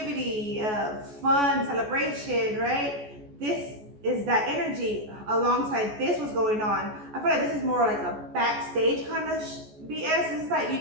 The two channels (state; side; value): late; left; 14 ms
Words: fun, celebration, right? This is that energy. Alongside this was going on. I feel like this is more like a backstage kind of BS. It's like